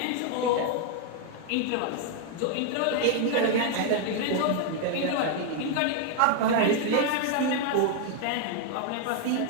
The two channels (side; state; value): both; different; correlation 0.00